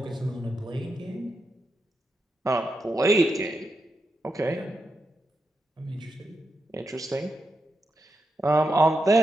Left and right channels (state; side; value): normal; both; correlation 0.86